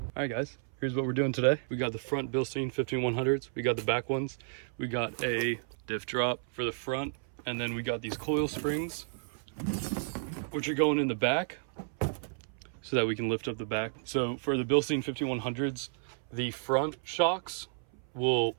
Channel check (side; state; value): left; silent; 56 dB below the other